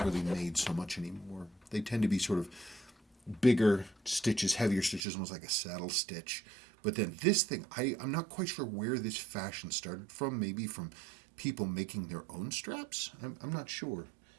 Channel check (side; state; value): left; drops out; at 5.1 s